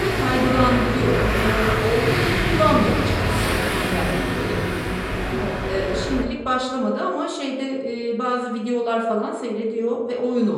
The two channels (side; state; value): both; identical; correlation 1.00